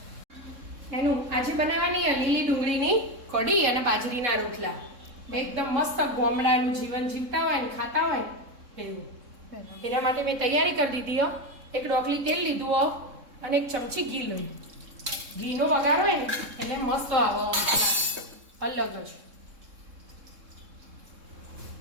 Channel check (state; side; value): late; left; 3.7 ms